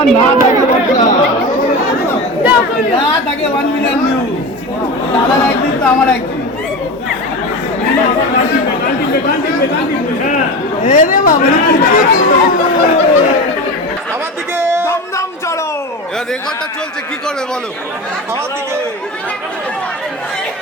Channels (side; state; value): both; normal; correlation 0.26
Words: না থাকে না থাকে 1 মিলিয়ন ভিউ দাদার একদিন তো আমার একদিন রে বাবা আমার দিকে দমদম চলো এবার রেকর্ডটা চলছে কি করবে বলো আমার দিকে